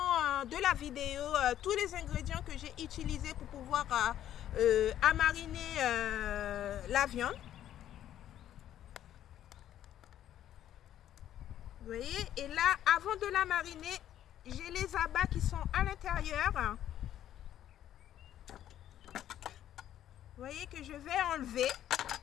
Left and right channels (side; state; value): right; quieter; 11.5 dB